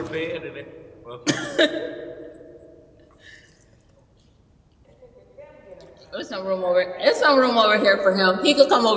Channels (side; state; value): both; identical; correlation 1.00